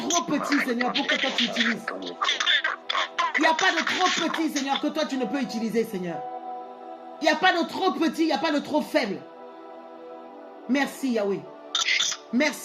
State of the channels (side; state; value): both; identical; correlation 1.00